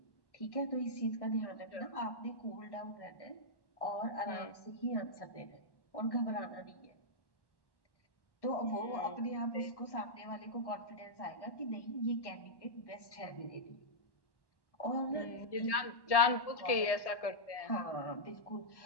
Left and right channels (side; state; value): right; late; 1.1 ms